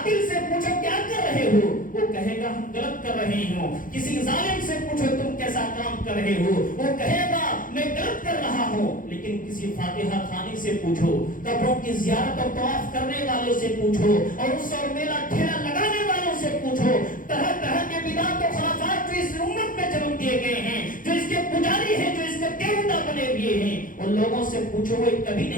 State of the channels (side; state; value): right; late; 0.39 ms